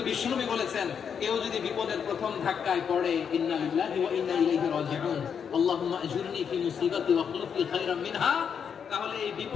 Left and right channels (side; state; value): right; quieter; 7.2 dB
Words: বিশ্বনবী বলেছেন, কেউ যদি বিপদের প্রথম ধাক্কায় পড়ে ইন্না লিল্লাহি ওয়া ইন্না ইলাইহি রাজিউন, আল্লাহুম্মা আজুরনি ফি মুসিবাতি ওয়াখলুফ লি খায়রাম মিনহা, তাহলে এই